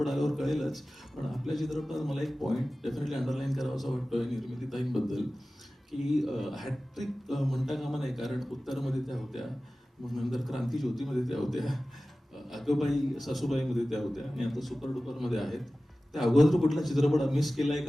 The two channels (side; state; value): both; normal; correlation 0.96